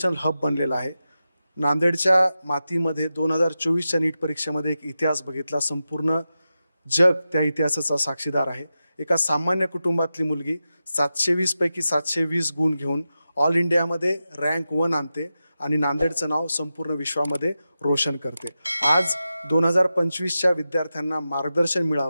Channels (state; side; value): inverted; both; correlation -0.92